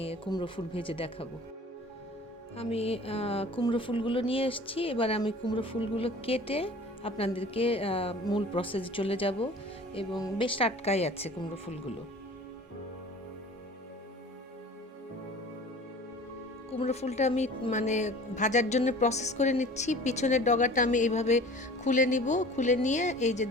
কুমড়ো ফুল ভেজে দেখাবো। আমি কুমড়ো ফুলগুলো নিয়ে এসেছি। এবার আমি কুমড়ো ফুলগুলো কেটে আপনাদেরকে মূল প্রসেসে চলে যাব, এবং বেশ টাটকাই আছে কুমড়ো ফুলগুলো। কুমড়ো ফুলটা আমি মানে ভাজার জন্য প্রসেস করে নিচ্ছি। পিছনের ডগাটা আমি এইভাবে খুলে নিব। খুলে নিয়ে এই যে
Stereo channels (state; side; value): normal; both; correlation 0.44